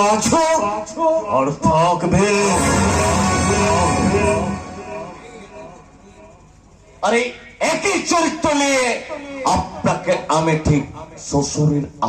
আছো আর থাকবে। আরে একই চরিত্র নিয়ে আপনাকে আমি ঠিক শ্বশুরের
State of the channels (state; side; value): identical; both; correlation 1.00